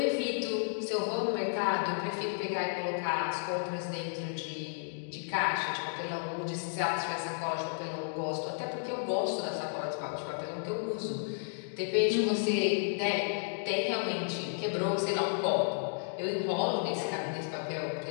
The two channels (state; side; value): silent; right; digital silence